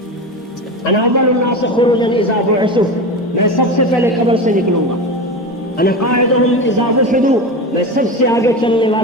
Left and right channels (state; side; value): normal; both; correlation 0.24